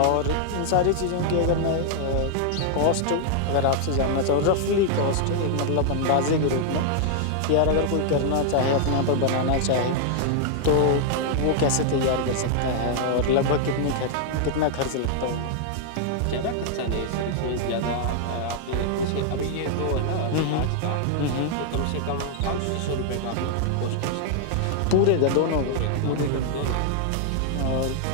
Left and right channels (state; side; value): different; both; correlation -0.01